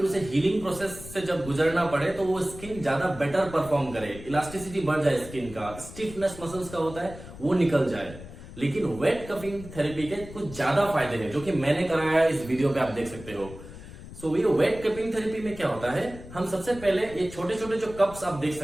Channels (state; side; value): noise; left; rumble, 15 dB below the sound